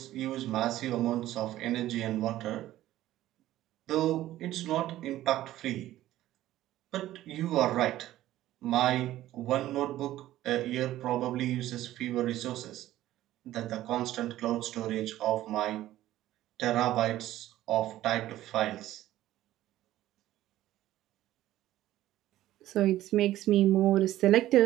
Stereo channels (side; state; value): left; quieter; 14.4 dB